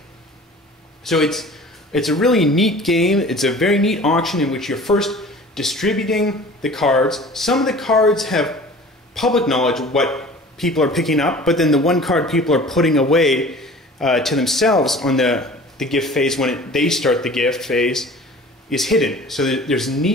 So it's a really neat game. It's a very neat auction in which you're first distributing the cards. Some of the cards have public knowledge of what people are picking up, but then the 1 card people are putting away to themselves on the gift phase when they start the gift phase is hidden. So there's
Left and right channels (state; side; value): normal; both; correlation 0.43